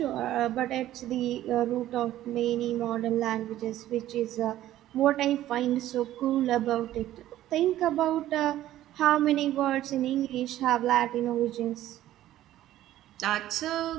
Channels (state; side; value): quieter; left; 13.6 dB